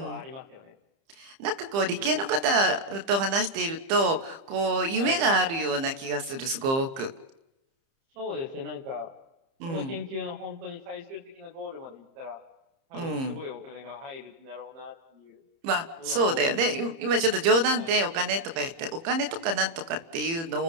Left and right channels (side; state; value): left; late; 30 ms